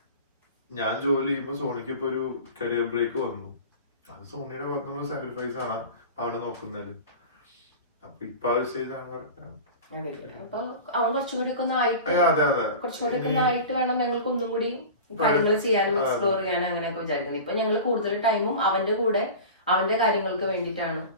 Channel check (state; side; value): inverted; both; correlation -0.34